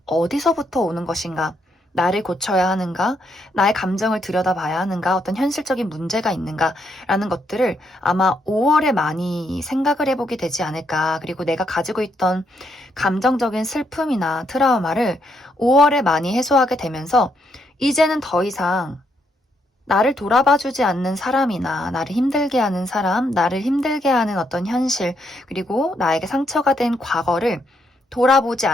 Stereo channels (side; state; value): both; normal; correlation 0.76